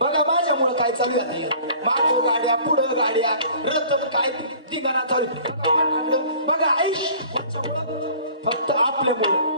बघा माझ्यामुळे काय चालू आहे. मागं गाड्या पुढं गाड्या रतन काय तिघांना चालू. बघा आयुष फक्त आपल्यामुळं.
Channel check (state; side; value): inverted; both; correlation -0.48